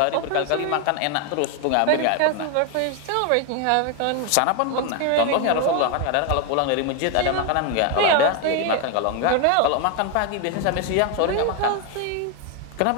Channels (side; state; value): both; different; correlation 0.01